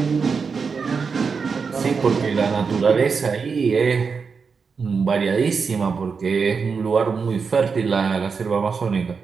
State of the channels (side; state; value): left; quieter; 5.4 dB